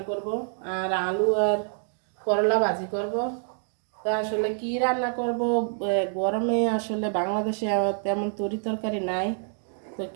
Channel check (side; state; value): left; silent; 60 dB below the other